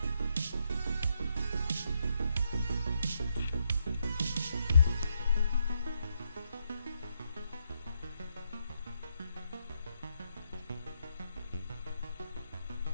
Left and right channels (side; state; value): both; inverted; correlation -0.78